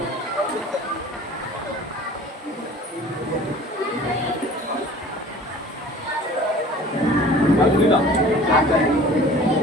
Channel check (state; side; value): normal; both; correlation 0.45